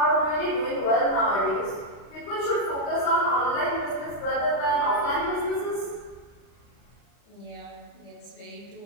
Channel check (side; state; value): right; late; 40 ms